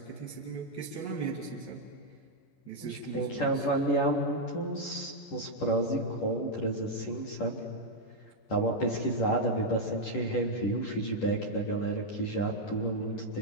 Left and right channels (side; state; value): right; late; 10 ms